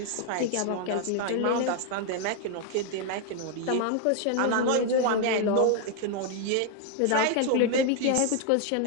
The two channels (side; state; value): both; different; correlation 0.01